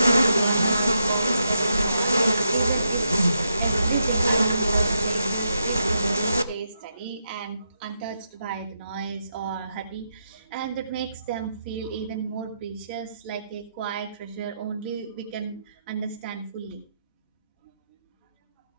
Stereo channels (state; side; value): inverted; both; correlation -0.82